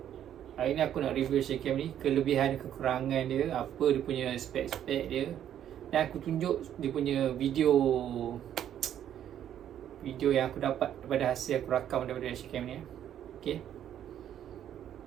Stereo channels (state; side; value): quieter; left; 10.4 dB